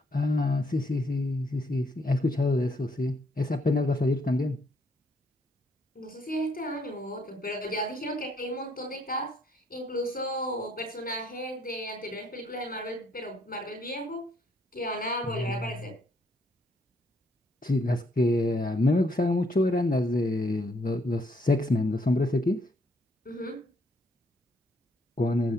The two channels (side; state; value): both; normal; correlation 0.70